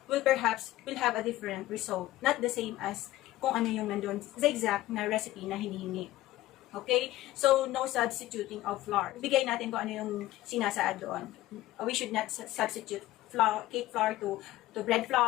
will have a different result. Not the same as kung ano yung nandun sa exact na recipe na hinihingi. Okay? So, no substituting of flour. Bigay natin kung ano yung sinasaad doon. We should not substitute cake flour to bread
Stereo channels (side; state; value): right; quieter; 16.1 dB